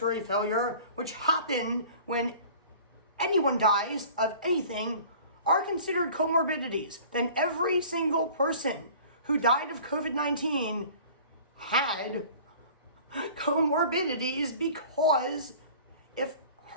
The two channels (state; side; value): inverted; both; correlation -0.45